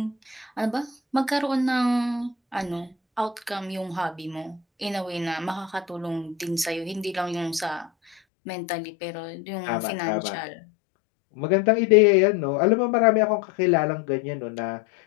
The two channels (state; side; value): drops out; right; at 8.2 s